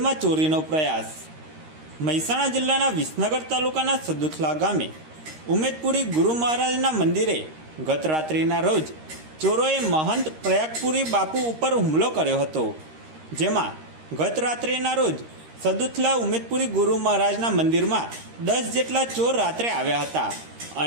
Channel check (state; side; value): late; left; 13 ms